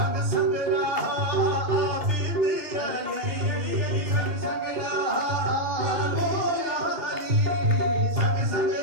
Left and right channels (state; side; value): late; left; 2.6 ms